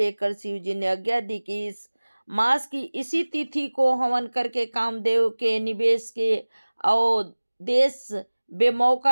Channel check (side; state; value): both; inverted; correlation -1.00